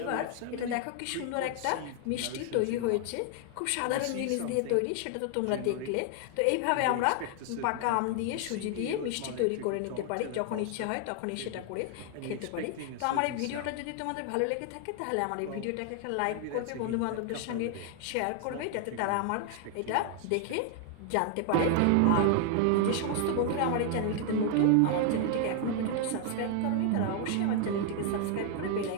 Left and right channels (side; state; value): both; different; correlation 0.00